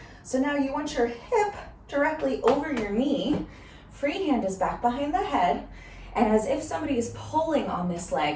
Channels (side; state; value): both; identical; correlation 1.00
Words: So now you want your hip directly over your knee. Free hand is back behind the head. And as if somebody is pulling on this